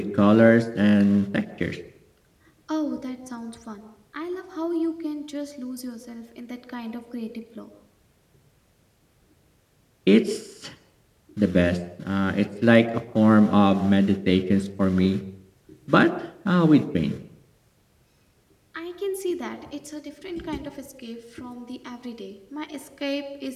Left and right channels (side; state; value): both; identical; correlation 1.00